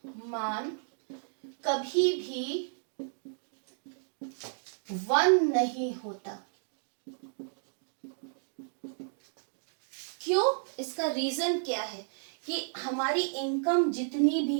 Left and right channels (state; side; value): silent; left; digital silence